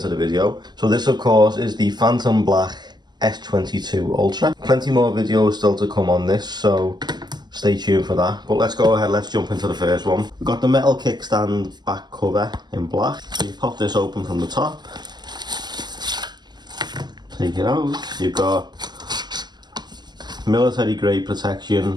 the video. So this of course is the Phantom Black S22 Ultra. Plenty more videos still to come on this, so stay tuned for that. But let's go ahead, let's jump into the first one. We've got the metal kickstand back cover in black. So you pop this open from the top, take it out. You've got military grade protection,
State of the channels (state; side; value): late; left; 0.21 ms